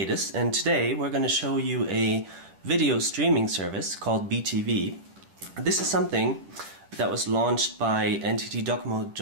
and today we're going to show you a video streaming service called BeeTV. This is something that was launched by NTT DoCoMo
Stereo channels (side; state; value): left; late; 10 ms